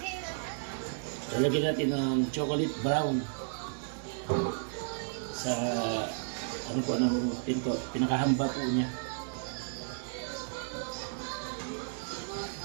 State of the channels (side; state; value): left; silent; 55 dB below the other